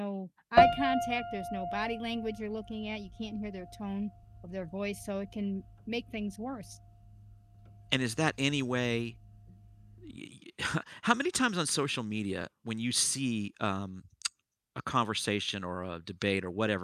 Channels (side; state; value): both; identical; correlation 1.00